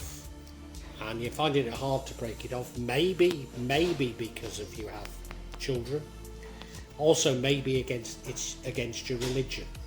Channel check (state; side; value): identical; both; correlation 1.00